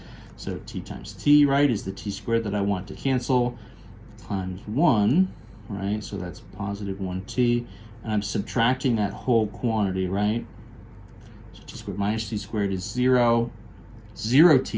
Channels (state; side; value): identical; both; correlation 1.00